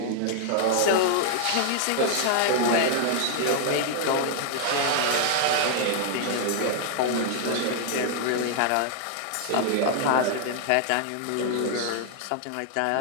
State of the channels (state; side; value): different; both; correlation -0.01